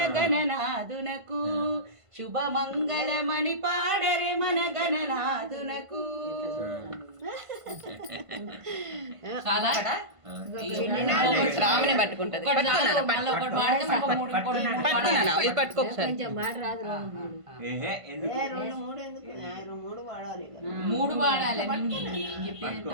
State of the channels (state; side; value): late; left; 1.5 ms